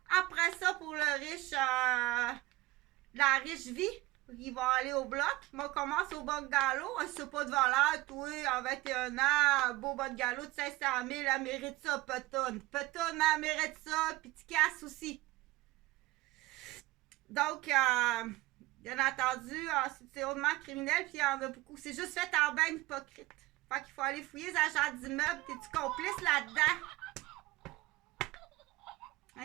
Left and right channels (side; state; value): left; quieter; 19.5 dB